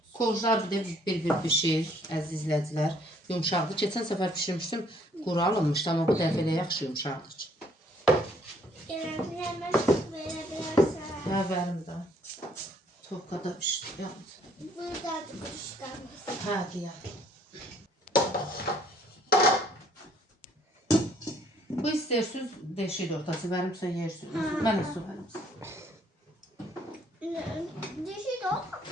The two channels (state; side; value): normal; both; correlation 0.63